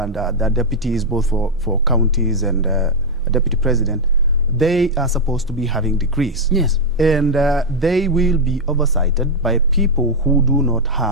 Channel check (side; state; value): right; noise; hum, 21 dB below the sound